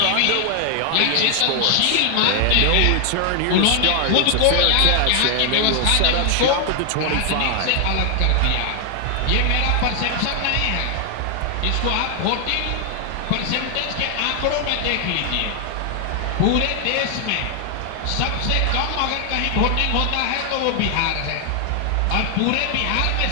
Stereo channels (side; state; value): both; different; correlation 0.00